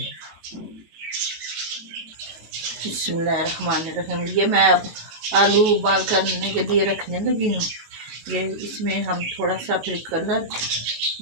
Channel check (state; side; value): late; left; 19 ms